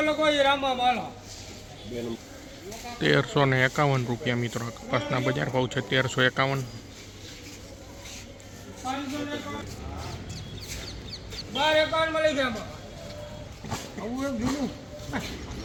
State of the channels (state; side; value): identical; both; correlation 1.00